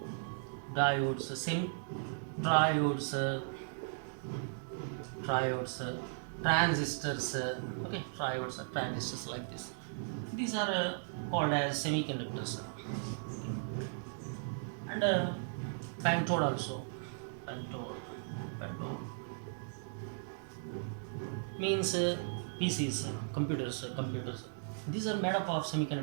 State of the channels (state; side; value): silent; left; digital silence